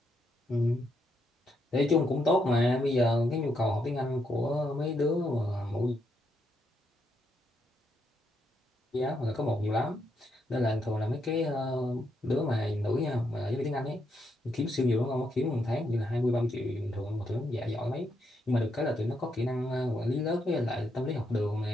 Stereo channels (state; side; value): normal; both; correlation 0.78